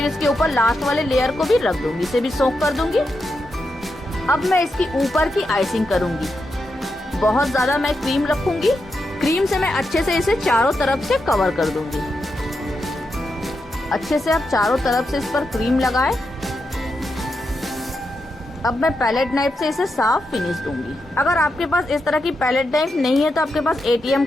इसके ऊपर लास्ट वाले लेयर को भी रख दूंगी, इसे भी सोक कर दूंगी। अब मैं इसकी ऊपर की आइसिंग करूंगी। बहुत ज्यादा मैं क्रीम रखूंगी। क्रीम से मैं अच्छे से इसे चारों तरफ से कवर कर दूंगी। अच्छे से आप चारों तरफ से इस पर क्रीम लगाएं। अब मैं पैलेट नाइफ से इसे साफ फिनिश दूंगी। अगर आपके पास इस तरह की पैलेट नाइफ नहीं है तो आपके पास ATM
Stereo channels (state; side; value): normal; both; correlation 0.86